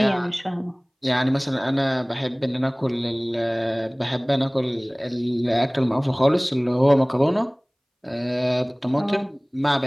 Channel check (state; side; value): identical; both; correlation 1.00